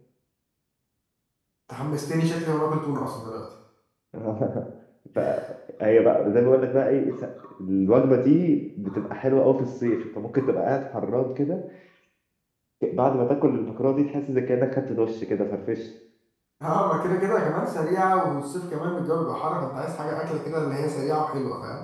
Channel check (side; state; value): both; identical; correlation 1.00